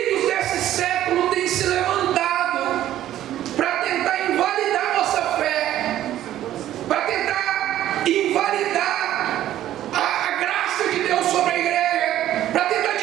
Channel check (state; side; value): quieter; left; 12.7 dB